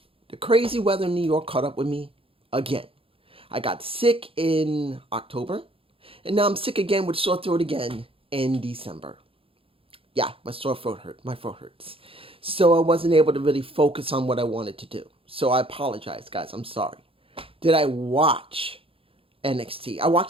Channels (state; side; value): late; left; 0.27 ms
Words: The crazy weather in New York caught up with me again. I got sick in October, and now I'm sick again with sore throat again in December. Yeah, my sore throat hurt. My throat hurts. So I wasn't able to really focus on what I wanted to do. So I apologize, guys. I'm sorry. Did I watch NXT? I